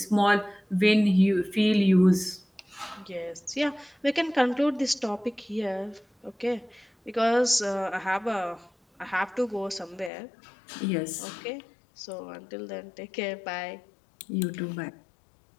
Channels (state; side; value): drops out; right; at 10.1 s